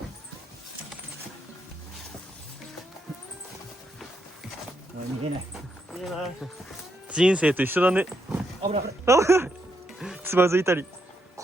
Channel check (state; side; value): normal; both; correlation 0.79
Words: 逃げない。いいな。人生と一緒だね。危ない。つまずいたり